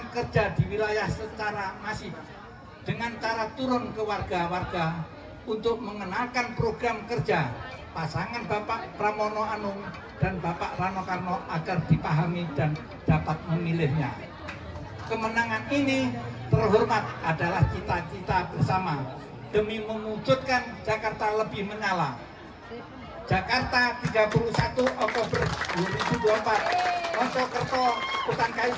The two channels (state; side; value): identical; both; correlation 1.00